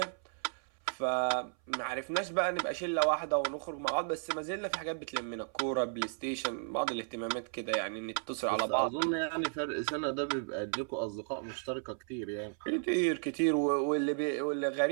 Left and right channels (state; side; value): silent; left; 55 dB below the other